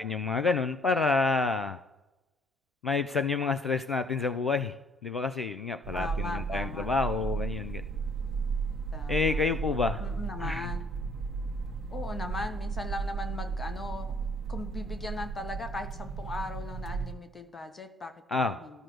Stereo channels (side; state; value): both; normal; correlation 0.61